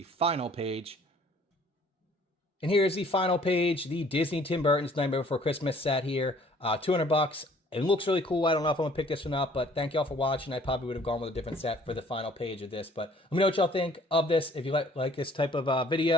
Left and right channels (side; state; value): both; normal; correlation 0.57